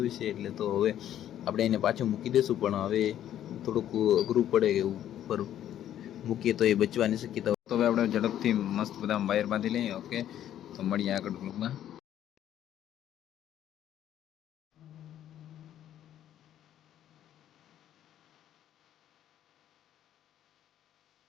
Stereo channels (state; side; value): quieter; right; 11.3 dB